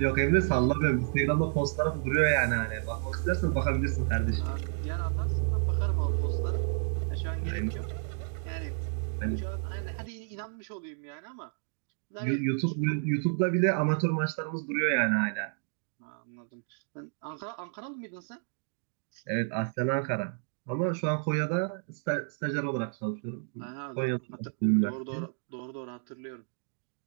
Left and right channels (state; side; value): silent; left; 57 dB below the other